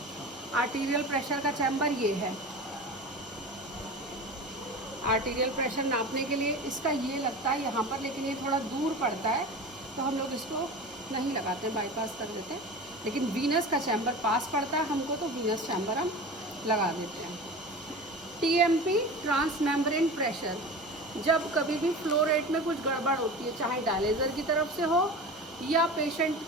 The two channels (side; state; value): both; normal; correlation 0.32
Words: Arterial pressure का चैम्बर ये है। आर्टीरियल प्रेशर नापने के लिए इसका ये लगता है यहाँ पर, लेकिन ये थोड़ा दूर पड़ता है, तो हम लोग इसको नहीं लगाते, बाईपास कर देते हैं। लेकिन वीनस का चैम्बर पास पड़ता है हमको, तो वीनस चैम्बर हम लगा देते हैं। TMP, transmembrane pressure. जब कभी भी फ्लो रेट में कुछ गड़बड़ होती है, चाहे डायलिजर की तरफ से हो, या पेशेंट